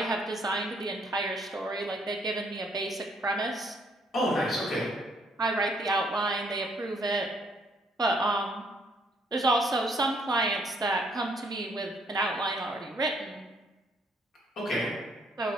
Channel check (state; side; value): normal; both; correlation 0.68